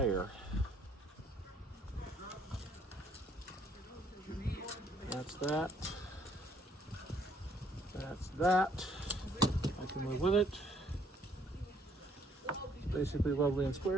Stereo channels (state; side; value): normal; both; correlation 0.65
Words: That's that. That's that. I can live with it. It's basically lovely and